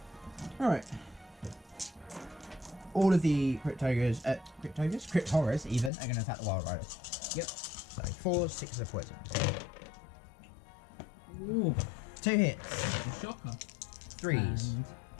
Alright. All of the Crypt Horrors even, are going to attack the Wild Riders. Yep. So 4s, 6s of poison. Ooh. 2 hits. A shocker. 3s. And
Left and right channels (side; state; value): right; drops out; at 5.9 s